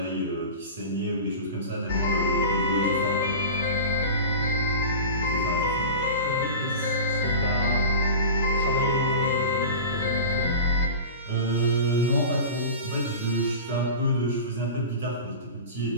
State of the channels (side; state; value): both; inverted; correlation -0.32